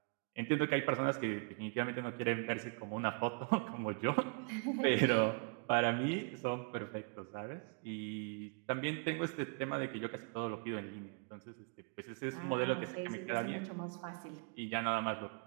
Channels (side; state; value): left; quieter; 38.0 dB